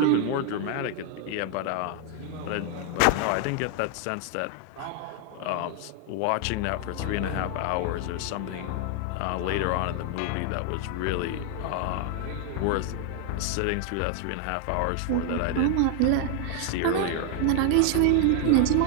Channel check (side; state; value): both; different; correlation 0.01